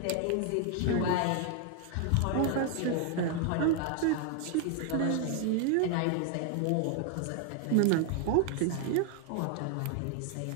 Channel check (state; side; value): different; both; correlation 0.00